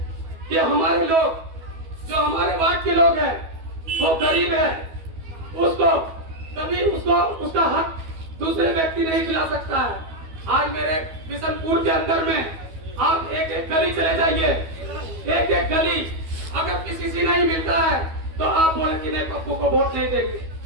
कि हमारे लोग, जो हमारे वार्ड के लोग हैं, वो गरीब है, उसको कभी उसका हक दूसरे व्यक्ति नहीं दिला सकता है। आज मेरे बिशनपुर के अंदर में आप एक गली चले जाइए, एक गली अगर किसी से नहीं मिलता है तो आप बोले कि नहीं, पप्पू को वोट नहीं देंगे।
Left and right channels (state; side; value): late; left; 12 ms